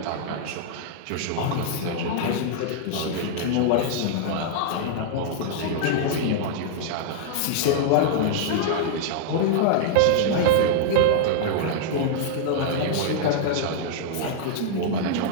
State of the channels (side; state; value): both; different; correlation -0.01